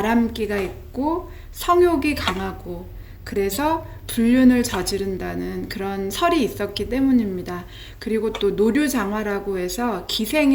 있고 성욕이 강하고, 그래서 불륜을 저지른다는 그런 설이 있었기 때문입니다. 그리고 또 노류장화라고 해서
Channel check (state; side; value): identical; both; correlation 1.00